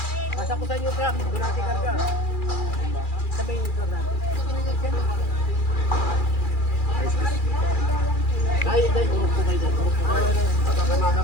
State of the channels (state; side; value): late; right; 2.4 ms